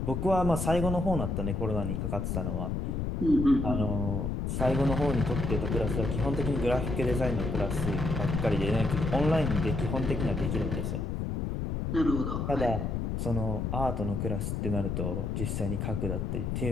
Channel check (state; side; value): noise; left; rumble, 1 dB below the sound